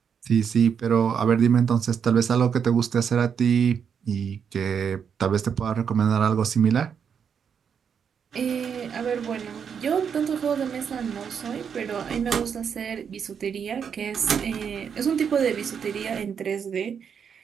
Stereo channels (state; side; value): quieter; left; 7.2 dB